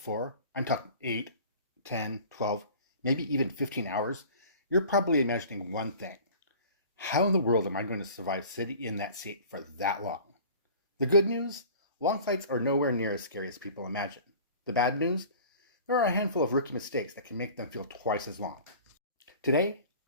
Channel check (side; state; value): both; inverted; correlation -0.44